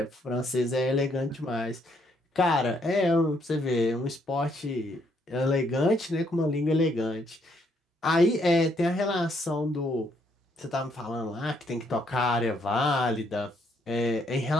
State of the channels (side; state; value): both; normal; correlation 0.71